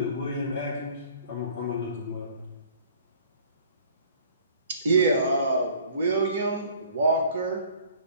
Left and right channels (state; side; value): inverted; both; correlation -0.53